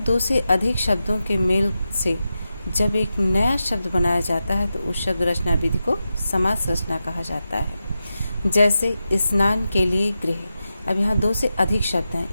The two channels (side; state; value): both; inverted; correlation -0.91